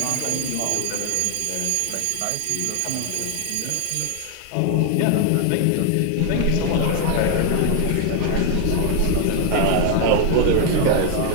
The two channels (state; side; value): different; both; correlation 0.01